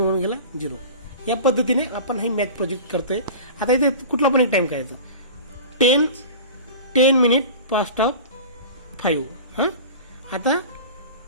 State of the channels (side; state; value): both; inverted; correlation -0.35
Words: 1 गेला 0. या पद्धतीने आपण हे मॅथ प्रोजेक्ट करतोय. आता इथे कुठला पण एक टाइम करायचा. 10 मिनिट पास्ट ऑफ 5. आता